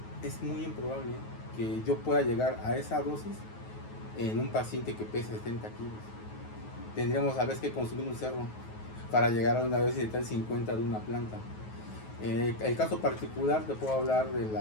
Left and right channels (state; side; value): late; right; 9.3 ms